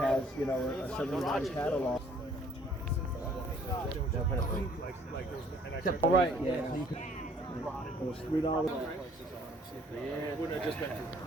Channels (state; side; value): normal; both; correlation 0.59